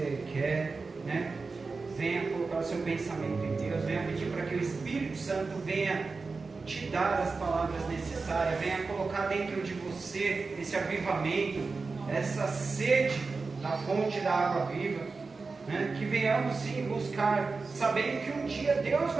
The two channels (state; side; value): quieter; left; 4.2 dB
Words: quer, né? Venha colocar o seu pensamento em Deus. Venha pedir para que o Espírito Santo venha te dar as palavras necessárias. Venha colocar dentro de você esse avivamento, essa sede da fonte da água viva. Né? Que venhamos sim buscar, sabendo que um dia Deus